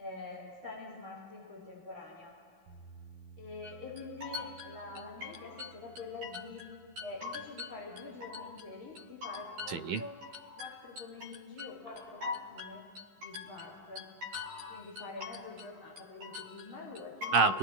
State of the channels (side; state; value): left; late; 13 ms